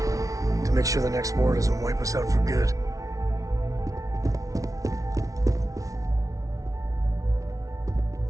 to make sure the next war doesn't wipe us out for good.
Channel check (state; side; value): late; left; 0.17 ms